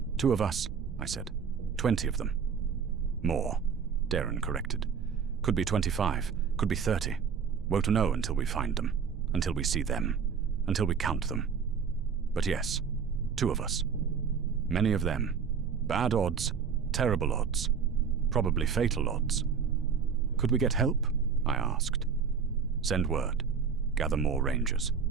2 of us, I said. 20 of them. More, Darren corrected. Could be 25, could be 30. Won't know until we find them, until we see them, until we count them. But yes, 2 of us. Many of them. Bad odds, terrible odds, probably fatal odds. Could we get help? I asked. Send word. Gather more rangers.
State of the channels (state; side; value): quieter; left; 6.4 dB